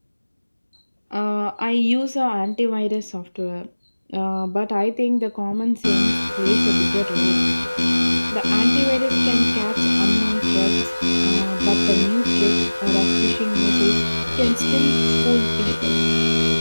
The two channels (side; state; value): both; inverted; correlation -1.00